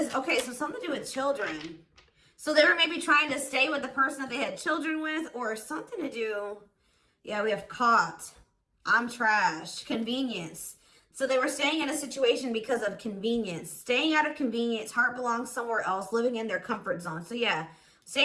okay, so something to do with children. So they were maybe trying to stay with the person that they had children with, or something to do. Yeah, we have caught. I'm trash. Convenience. So they were staying in a situation because of convenience. Staying out of convenience. Heart belongs somewhere else. Living in their comfort zone. So yeah,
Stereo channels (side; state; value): both; identical; correlation 1.00